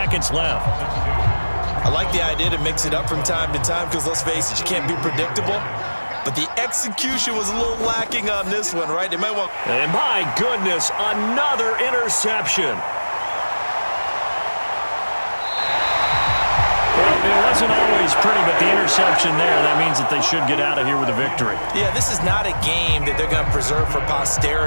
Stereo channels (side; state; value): both; inverted; correlation -1.00